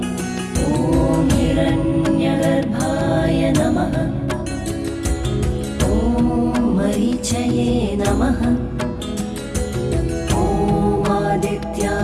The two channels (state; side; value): identical; both; correlation 1.00